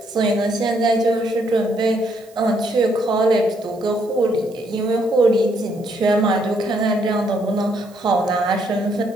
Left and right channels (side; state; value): right; noise; hiss, 28 dB below the sound